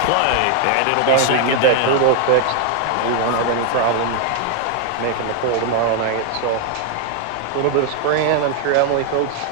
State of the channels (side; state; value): both; different; correlation 0.00